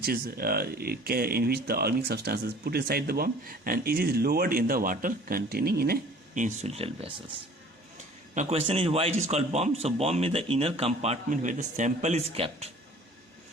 is in which the organic substance is put inside the bomb, and it is lowered in the water containing in a insulated vessels. Now question is why it is called bomb. So bomb is the inner compartment where the sample is kept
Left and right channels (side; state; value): both; normal; correlation 0.49